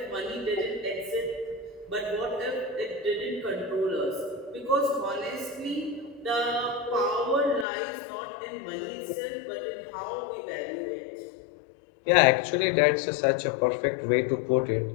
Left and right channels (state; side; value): drops out; right; at 7.7 s